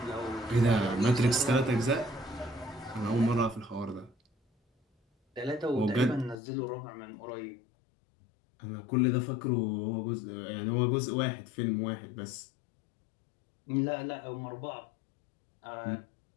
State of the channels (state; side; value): drops out; right; at 6.4 s